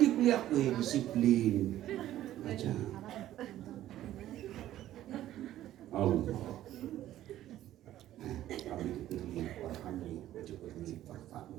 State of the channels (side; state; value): left; quieter; 13.3 dB